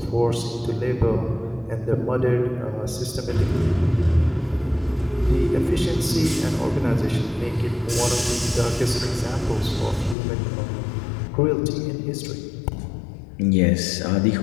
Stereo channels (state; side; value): drops out; right; at 10.2 s